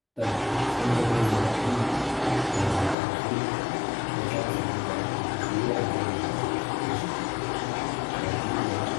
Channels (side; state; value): right; drops out; at 3.0 s